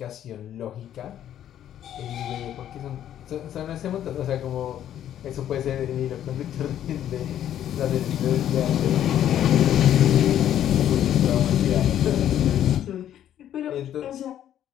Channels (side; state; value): right; quieter; 10.9 dB